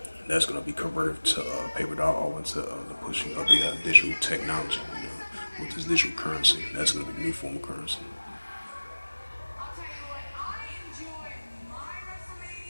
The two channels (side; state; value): both; inverted; correlation -1.00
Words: That's going to be converted to paper dollar or into the pushing of the digital technology. With this digital currency, that's going to be the new form of currency.